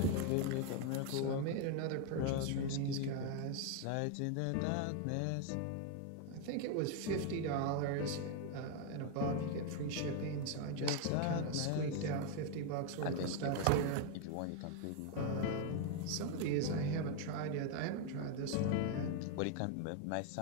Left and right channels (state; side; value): different; both; correlation 0.01